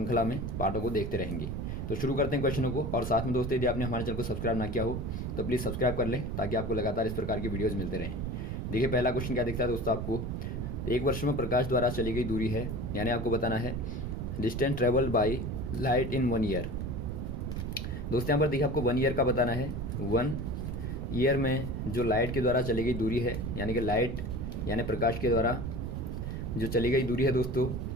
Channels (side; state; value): right; noise; rumble, 3 dB below the sound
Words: में पार्टों को देखते रहेंगे। तो शुरू करते हैं क्वेश्चनों को। और साथ में दोस्तों यदि आपने हमारे चैनल को सब्सक्राइब ना किया हो तो प्लीज़ सब्सक्राइब कर लें, ताकि आपको लगातार इस प्रकार की वीडियोज़ मिलते रहें। देखिए पहला क्वेश्चन क्या दिखता है दोस्तों आपको। एक वर्ष में प्रकाश द्वारा चली गई दूरी है, यानी आपको बताना है distance travelled by light in 1 year. दोस्तों यहाँ पर देखिए आपको 1 ईयर का बताना है। 1 ईयर में जो लाइट के द्वारा चली गई दूरी है, यानी कि लाइट यानी प्रकाश के द्वारा जो चली गई दूरी है दोस्तों,